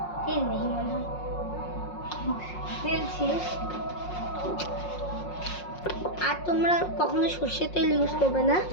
তেল নেই মনে হয়, তেল শেষ। আর তোমরা কখনো সর্ষের তেল ইউজ করবে না,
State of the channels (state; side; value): late; right; 5.5 ms